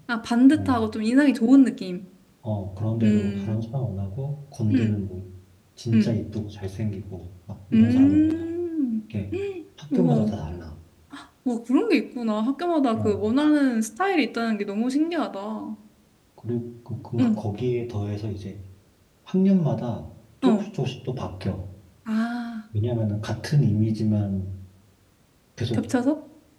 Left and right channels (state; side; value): identical; both; correlation 1.00